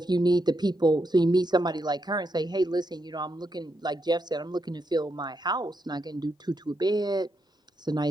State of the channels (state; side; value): normal; both; correlation 0.82